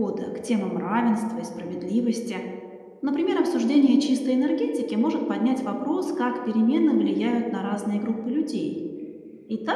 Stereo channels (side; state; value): both; identical; correlation 1.00